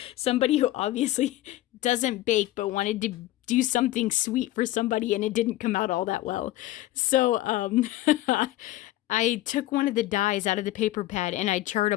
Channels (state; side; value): quieter; right; 15.8 dB